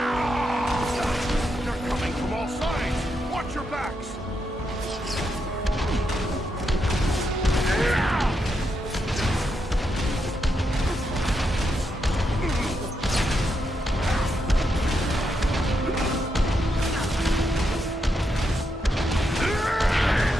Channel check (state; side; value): normal; both; correlation 0.82